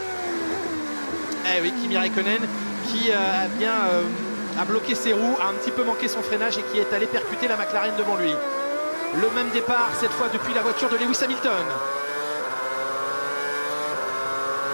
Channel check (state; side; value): inverted; both; correlation -1.00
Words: Eh oui, Kimi Raikkonen qui a bien a bloqué ses roues, a un petit peu manqué son freinage et qui est allé percuter la McLaren devant lui. Le même départ cette fois depuis la voiture de Lewis Hamilton.